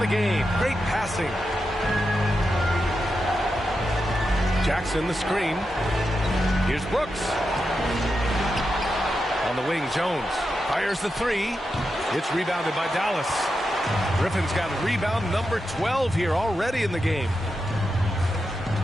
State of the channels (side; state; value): both; normal; correlation 0.88